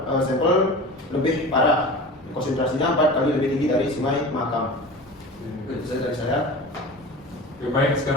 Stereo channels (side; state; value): both; normal; correlation 0.34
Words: lebih parah, konsentrasinya 4 kali lebih tinggi dari Sungai Mahakam. Itu saja dari saya. Baik,